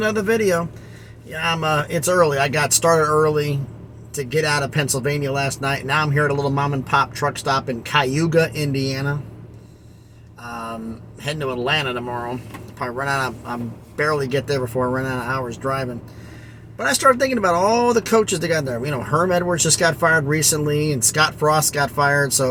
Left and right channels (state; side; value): identical; both; correlation 1.00